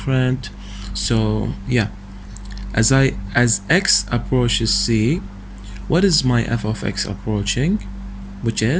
So yeah, as x approaches c, what is my f of x approaching, which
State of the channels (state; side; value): identical; both; correlation 1.00